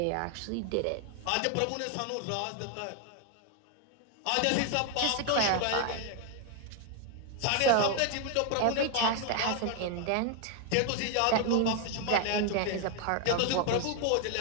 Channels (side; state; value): both; different; correlation 0.01